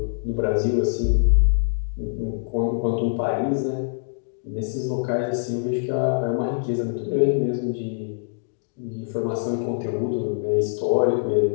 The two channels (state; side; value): silent; right; digital silence